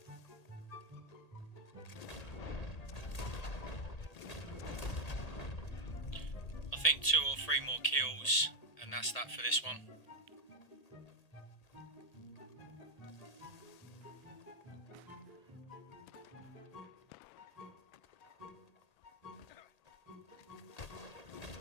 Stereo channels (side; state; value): right; late; 1.7 ms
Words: I think 2 or 3 more kills and that's that for this one.